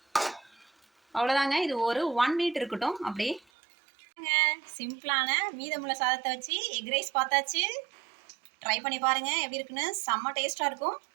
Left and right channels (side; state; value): left; drops out; at 3.4 s